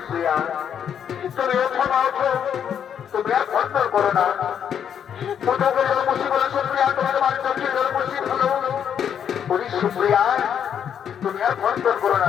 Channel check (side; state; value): right; quieter; 8.5 dB